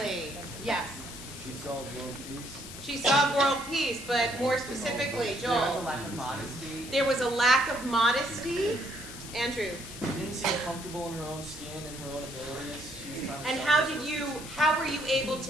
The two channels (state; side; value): noise; left; hiss, 12 dB below the sound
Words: Yes. She saw world peace. She saw world peace, but more specifically, There was a Joel. lack of modesty. There was a lack of modesty. Andrew. She didn't seem comfortable in her own skin and her own abilities. She was trying to And how were you able